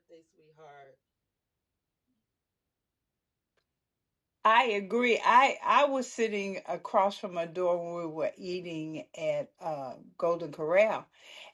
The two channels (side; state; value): both; identical; correlation 1.00